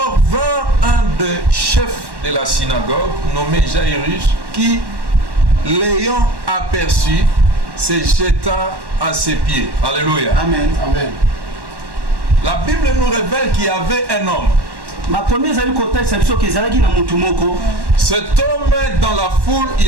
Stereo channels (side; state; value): left; late; 1.1 ms